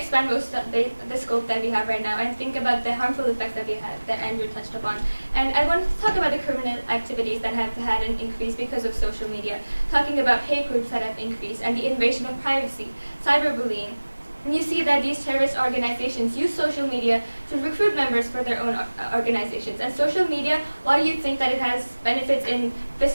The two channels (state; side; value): inverted; both; correlation -1.00